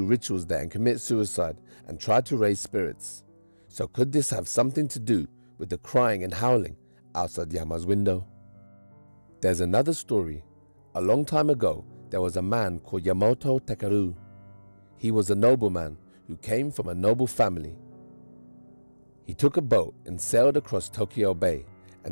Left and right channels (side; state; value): both; inverted; correlation -1.00